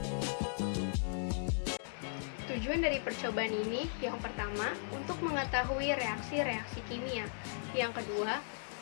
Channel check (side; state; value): right; silent; digital silence